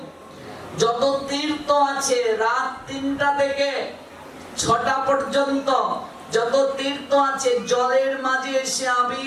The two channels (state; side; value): identical; both; correlation 1.00